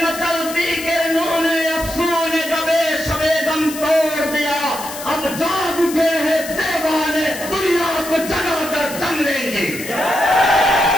मचलती के नूने अफसूने कबे सबे दम तोड़ दिया, अब जाग उठे हैं दीवाने, दुनिया को जगाकर दम लेंगे।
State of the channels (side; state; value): left; noise; hiss, 11 dB below the sound